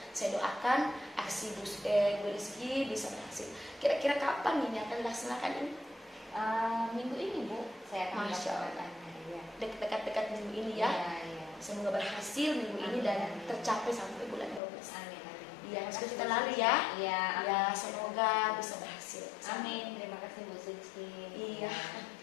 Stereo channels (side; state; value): right; drops out; at 14.6 s